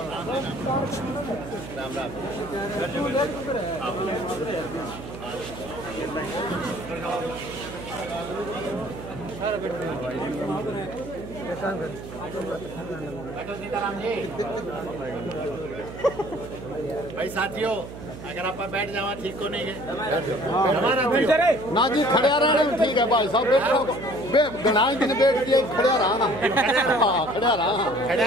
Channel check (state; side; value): noise; right; hum, 12 dB below the sound